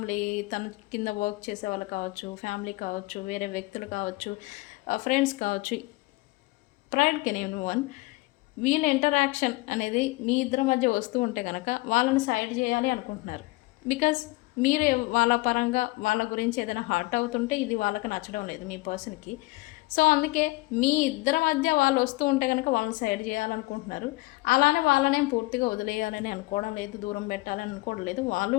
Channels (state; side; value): quieter; right; 22.0 dB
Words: తన కింద వర్క్ చేసే వాళ్ళు కావచ్చు, ఫ్యామిలీ కావచ్చు, వేరే వ్యక్తులు కావచ్చు, ఫ్రెండ్స్ కావచ్చు, ప్రైడ్ కెన్ ఎవ్రీవన్. వీళ్ళ ఇంటరాక్షన్ అనేది మీ ఇద్దరి మధ్య వస్తూ ఉంటే కనుక వాళ్ళని సైడ్ చేయాలి అనుకుంటున్నారు. బికాజ్ మీరు వాళ్ళ పరంగా వాళ్ళ గురించి ఏదైనా హర్ట్ అవుతుంటే ఇది వాళ్ళకి నచ్చడం లేదు మీ పర్సన్కి. సో అందుకే మీ ఇద్దరి మధ్య వాళ్ళు వస్తూ ఉంటే కనుక వాళ్ళని సైడ్ చేయాలనుకుంటున్నారు. అలానే వాళ్ళనేం పూర్తిగా వదిలేయాలని అనుకోవడం లేదు, దూరం పెట్టాలని అనుకోవడం లేదు. వాళ్ళు